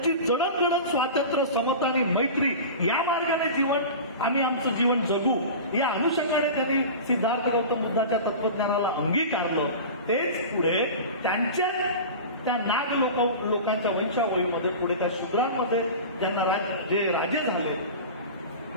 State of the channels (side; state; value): both; inverted; correlation -0.32